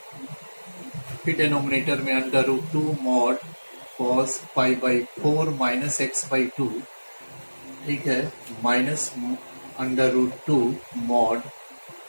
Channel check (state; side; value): inverted; both; correlation -1.00